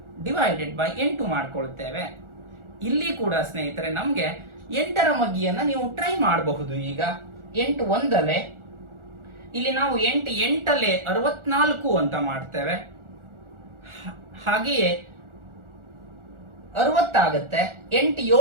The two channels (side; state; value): left; late; 1.4 ms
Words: ಡಿವೈಡೆಡ್ ಬೈ 8 ಮಾಡ್ಕೊಳ್ತೇವೆ. ಇಲ್ಲಿ ಕೂಡ ಸ್ನೇಹಿತರೆ ನಮ್ಗೆ 8ರ ಮಗ್ಗಿಯನ್ನ ನೀವು ಟ್ರೈ ಮಾಡಬಹುದು. ಈಗ 8 1 ಇಲ್ಲಿ ನಾವು 8 8 64 ಅಂತ ಮಾಡ್ತೇವೆ. ಹಾಗೆಯೇ 60 ಆಗುತ್ತೆ. 8